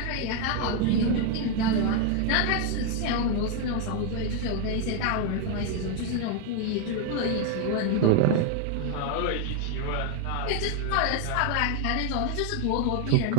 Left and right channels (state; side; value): different; both; correlation 0.01